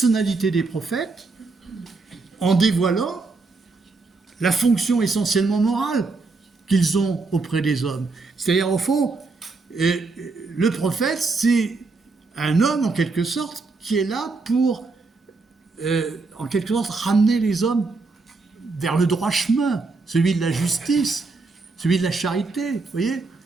des prophètes en dévoilant la fonction essentiellement morale qu'ils ont auprès des hommes. C'est-à-dire, au fond, le prophète, c'est un homme, en quelque sorte, qui est là pour, en quelque sorte, ramener les hommes vers le droit chemin, celui de la justice, celui de la charité, vous voyez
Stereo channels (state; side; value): quieter; left; 3.9 dB